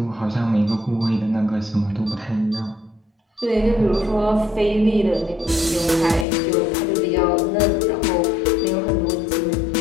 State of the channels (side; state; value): right; drops out; at 6.2 s